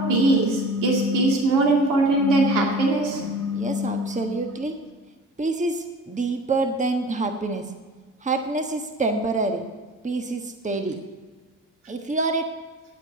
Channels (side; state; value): both; normal; correlation 0.41